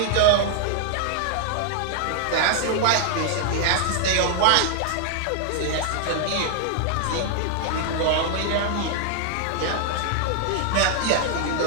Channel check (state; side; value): different; both; correlation 0.00